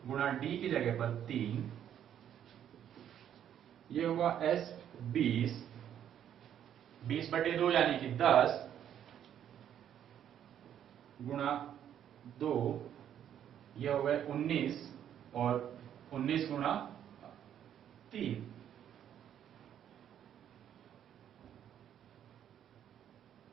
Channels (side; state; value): left; quieter; 9.9 dB